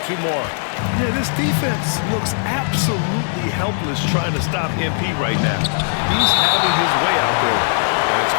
2 more. Yeah, this defense looks absolutely helpless trying to stop MP right now. He's having his way out there. And it's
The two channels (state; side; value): silent; right; digital silence